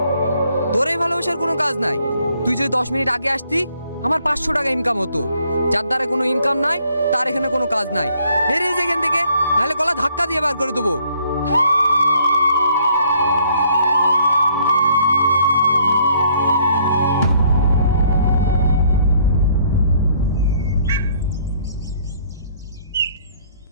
তোর এই ভালোবাসার কোনো কাজ নাই। তুই যদি 10 মিনিট আগে আসতি আমার 500 টাকা ইনকাম হতো। যার দ্বারা কোনো ইনকাম নাই তার এখানে কোনো কাজ নাই। বেরিয়ে যা এখান থেকে, নাহলে গলা ধাক্কা দিয়ে বার করে দেবো।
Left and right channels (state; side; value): inverted; both; correlation -0.64